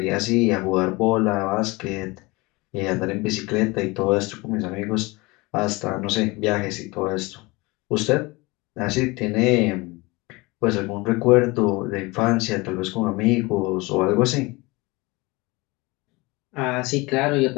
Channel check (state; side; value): quieter; right; 24.0 dB